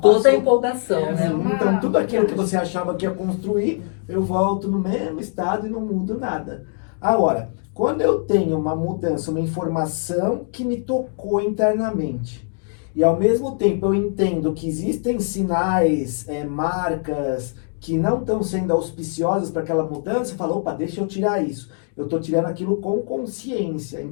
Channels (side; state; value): right; silent; 57 dB below the other